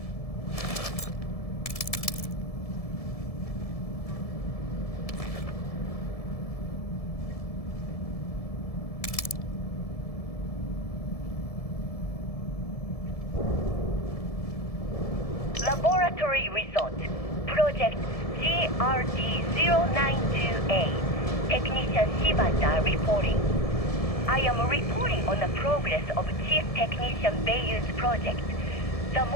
Laboratory result. Project GRD-092A. Technician Shibata reporting. I am reporting on the progress of Chief Technician Beiyu's project, the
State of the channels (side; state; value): right; late; 1.7 ms